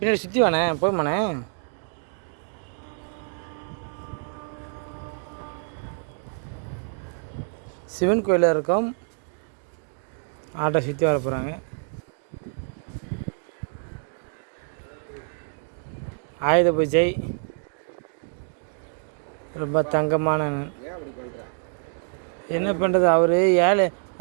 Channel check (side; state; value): left; silent; 61 dB below the other